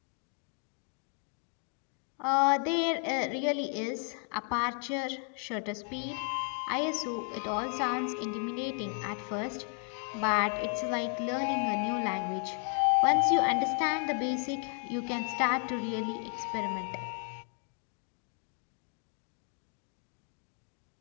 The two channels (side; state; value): right; quieter; 39.6 dB